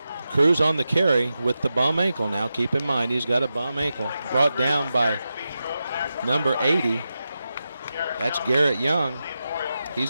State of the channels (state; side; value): inverted; both; correlation -0.90